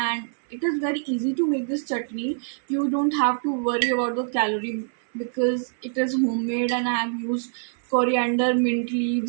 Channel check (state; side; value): silent; left; 62 dB below the other